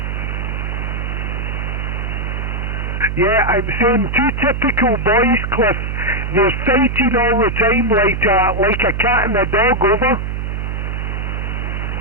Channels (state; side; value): noise; right; hum, 3 dB below the sound